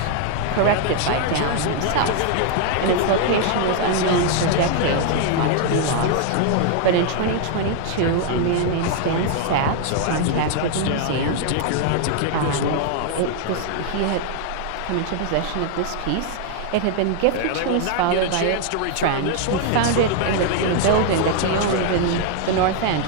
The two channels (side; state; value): both; different; correlation 0.00